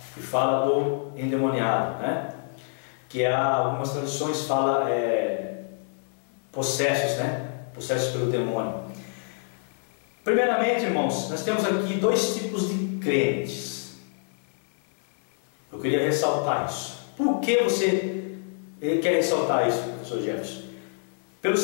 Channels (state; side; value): silent; right; 56 dB below the other